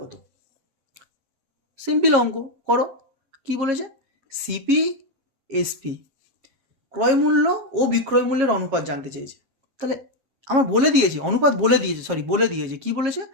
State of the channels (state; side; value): late; left; 7.4 ms